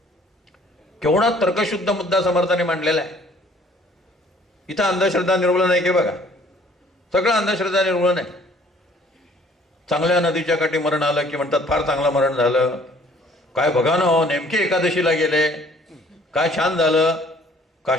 केवढा तर्कशुद्ध मुद्दा समर्थाने मांडलेला आहे. इथं अंधश्रद्धा निर्मूलन आहे की बघा. सगळं अंधश्रद्धा निर्मूलन आहे. चांगल्या नदीच्या काठी मरण आलं की म्हणतात फार चांगलं मरण झालं. काय बघा ना हो, नेमके एकादशीला गेले, काय छान झालं.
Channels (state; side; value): normal; both; correlation 0.57